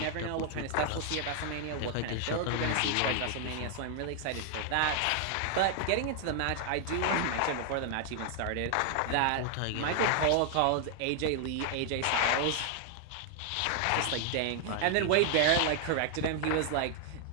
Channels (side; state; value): both; different; correlation 0.00